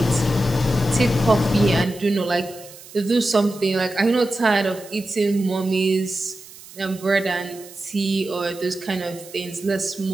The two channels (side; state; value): right; noise; hiss, 19 dB below the sound